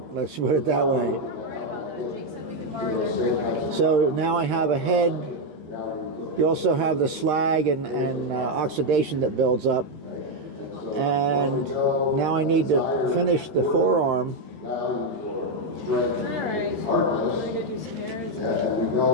let's put it that way. So now I have a head. You also have the slag and oxidation that builds up. And now I need to finish the forearm.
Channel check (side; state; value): left; late; 13 ms